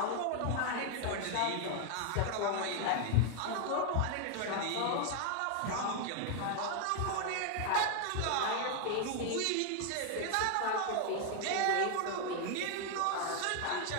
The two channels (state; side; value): different; both; correlation 0.00